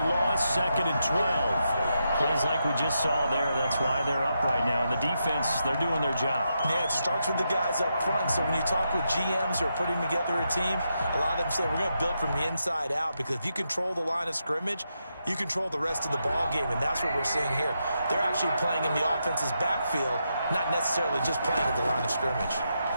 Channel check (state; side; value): inverted; both; correlation -0.84